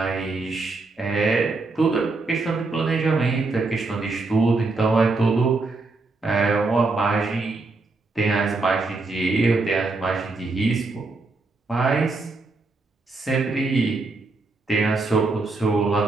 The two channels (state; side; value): quieter; left; 3.6 dB